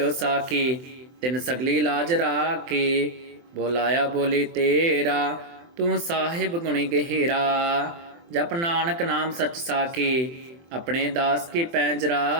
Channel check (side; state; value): left; late; 24 ms